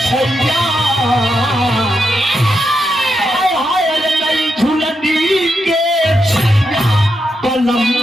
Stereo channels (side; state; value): both; normal; correlation 0.84